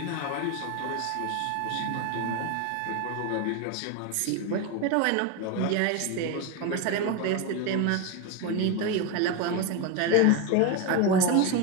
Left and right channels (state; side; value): different; both; correlation 0.02